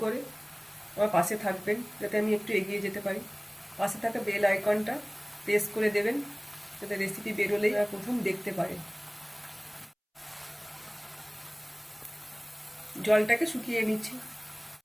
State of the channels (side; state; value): both; identical; correlation 1.00